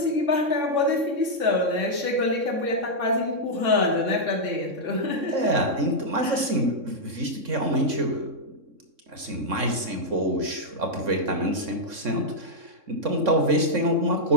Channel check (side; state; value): left; late; 3.6 ms